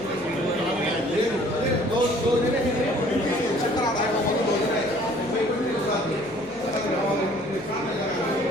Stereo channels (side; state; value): left; noise; hum, 24 dB below the sound